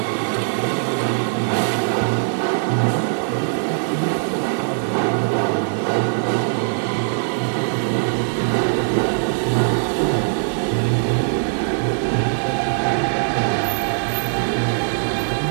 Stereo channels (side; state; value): left; silent; digital silence